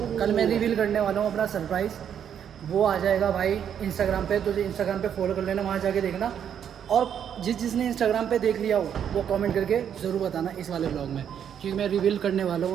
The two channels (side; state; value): left; quieter; 8.8 dB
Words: कल मैं रिवील करने वाला हूँ अपना सरप्राइज़। वो आ जाएगा भाई इंस्टाग्राम पे, तो इंस्टाग्राम पे फॉलो कर लेना, वहाँ जाके देखना। और जिसने इंस्टाग्राम पे देख लिया हो वो कमेंट करके ज़रूर बताना इस वाले ब्लॉग में, क्योंकि मैं रिवील करने वाला